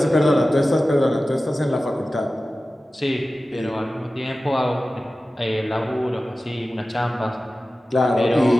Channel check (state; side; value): normal; both; correlation 0.95